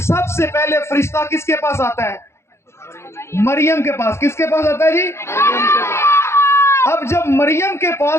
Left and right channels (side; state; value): right; late; 0.13 ms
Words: سب سے پہلے فرشتہ کس کے پاس آتا ہے؟ مریم کے پاس. کس کے پاس آتا ہے جی؟ اب جب مریم کے